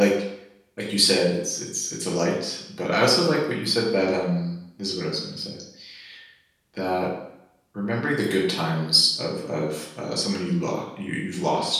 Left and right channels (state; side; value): identical; both; correlation 1.00